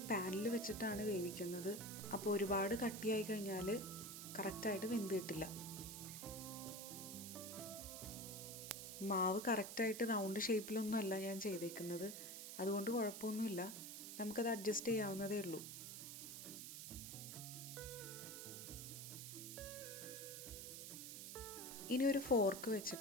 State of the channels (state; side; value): noise; right; hiss, 8 dB below the sound